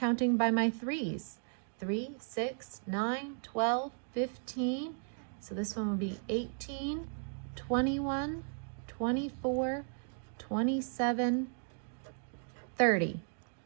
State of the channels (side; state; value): left; silent; 54 dB below the other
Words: by my 3s. 3, 6, 9, 12, 15. So this one will be 18, 21, 24, 27, 30.